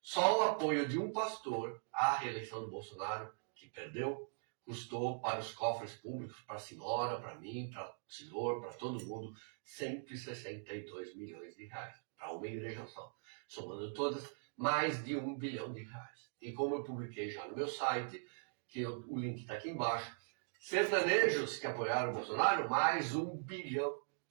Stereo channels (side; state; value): left; silent; digital silence